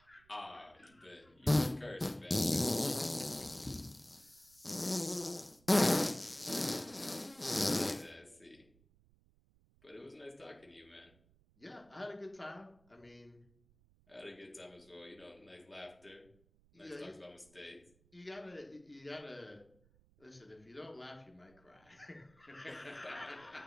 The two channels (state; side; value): noise; right; rumble, 30 dB below the sound